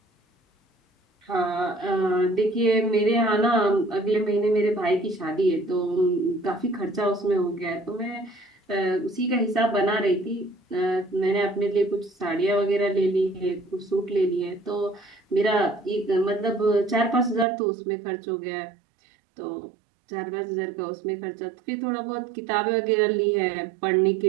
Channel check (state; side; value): drops out; left; at 17.4 s